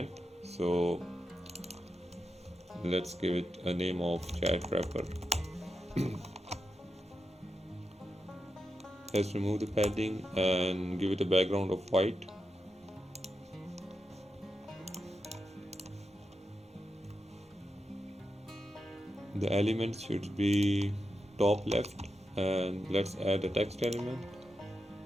So let's give it a name of chat wrapper. Let's remove the padding and give it a background of white. The elements should be top left and let's add a text element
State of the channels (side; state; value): both; normal; correlation 0.88